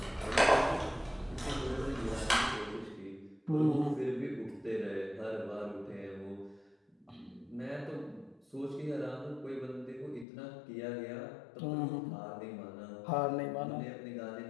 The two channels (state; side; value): drops out; right; at 10.2 s